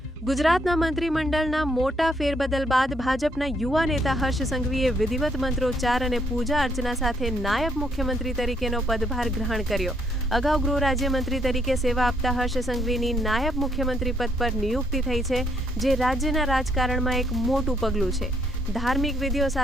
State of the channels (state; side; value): normal; both; correlation 0.71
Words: ગુજરાતના મંત્રીમંડળના મોટા ફેરબદલ બાદ ભાજપના યુવા નેતા હર્ષ સંઘવીએ વિધિવત મંત્રોચ્ચાર અને પૂજા અર્ચના સાથે નાયબ મુખ્યમંત્રી તરીકેનો પદભાર ગ્રહણ કર્યો। અગાઉ ગૃહ રાજ્યમંત્રી તરીકે સેવા આપતા હર્ષ સંઘવીની નાયબ મુખ્યમંત્રી પદ પર નિયુક્તિ થઈ છે, જે રાજ્યના રાજકારણમાં એક મોટું પગલું છે। ધાર્મિક વિધિઓ